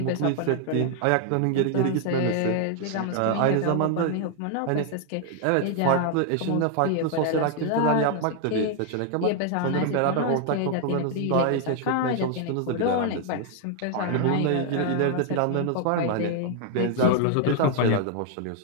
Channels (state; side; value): different; both; correlation 0.00